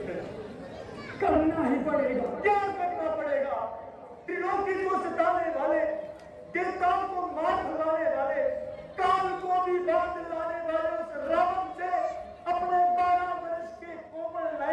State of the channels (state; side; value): identical; both; correlation 1.00